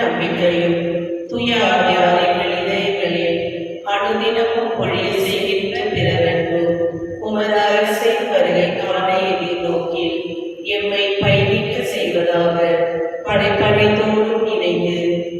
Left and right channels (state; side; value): identical; both; correlation 1.00